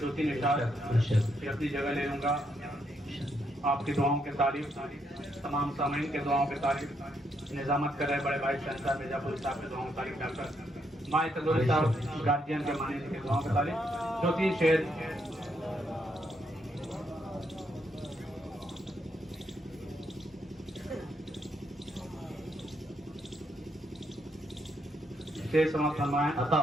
اشعار اپنی جگہ لے لوں گا آپ کی دعاؤں کے تعریف تمام سامعین کے دعاؤں کے تعریف نظامت کر رہے بڑے بھائی شہنشاہ مرزا پور صاحب کے دعاؤں کی تعریف ڈاکٹر مائے تندوری صاحب گارجین کے معنی کے دعاؤں کی تعریف 2-3 شعر شعر سماعت فرمائیں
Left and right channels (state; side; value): normal; both; correlation 0.77